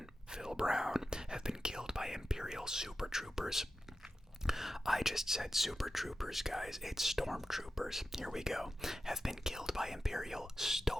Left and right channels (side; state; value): both; normal; correlation 0.92